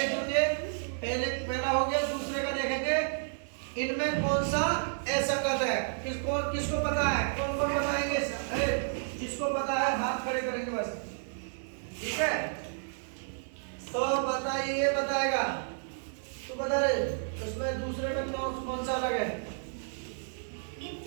लीजिए। पहला हो गया, दूसरे का देखेंगे। इनमें कौन सा असंगत है? किसको पता है? कौन कौन बताएंगे? जिसको पता है हाथ खड़े करेंगे बस। ठीक है, तो बताइए, बताएगा तो बता रहे। इसमें दूसरे में कौन सा अलग है?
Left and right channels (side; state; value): left; silent; digital silence